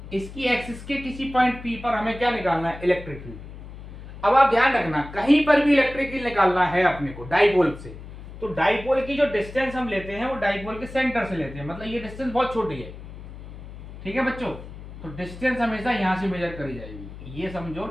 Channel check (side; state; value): left; noise; hum, 14 dB below the sound